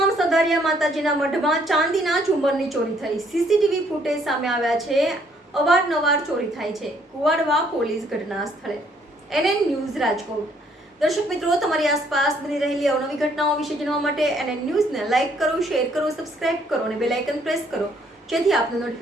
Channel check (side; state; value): both; normal; correlation 0.66